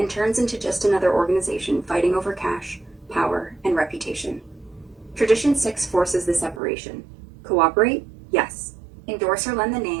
turns into just another organization fighting over cash, power, and reputation. Tradition 6 forces the separation. Cooperate? Yes. Endorse or lend the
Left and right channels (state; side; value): drops out; left; at 6.6 s